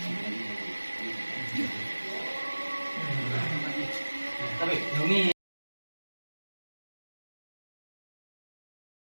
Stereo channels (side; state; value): both; inverted; correlation -1.00